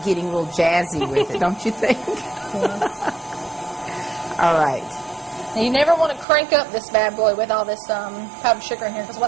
getting real jazzy with it, don't you think? Yes. All right. Now, you never want to crank up this bad boy with all this powdered sugar in here, because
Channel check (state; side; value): drops out; left; at 6.2 s